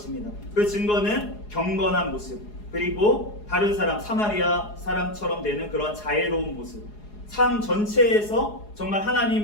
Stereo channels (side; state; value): right; late; 4.8 ms